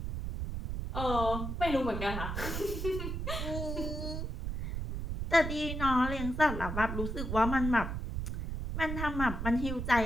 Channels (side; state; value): right; noise; rumble, 4 dB below the sound